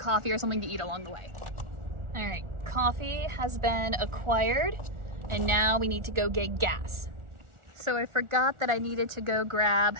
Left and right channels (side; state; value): left; late; 1.4 ms